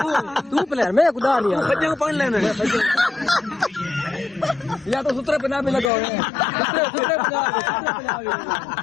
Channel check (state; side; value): drops out; right; at 5.9 s